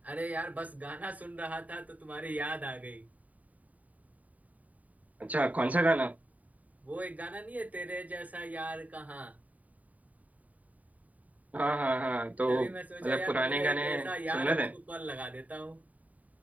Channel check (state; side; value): late; left; 0.072 ms